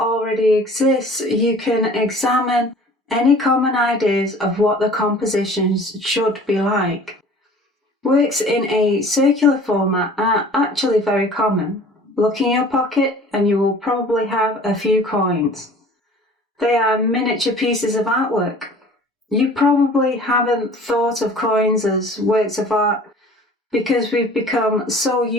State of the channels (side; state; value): both; normal; correlation 0.47